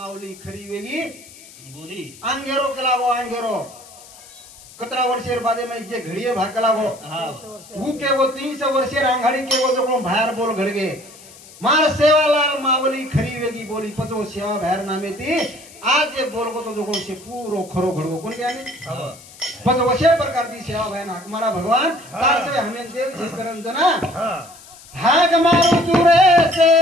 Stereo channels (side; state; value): left; noise; hiss, 21 dB below the sound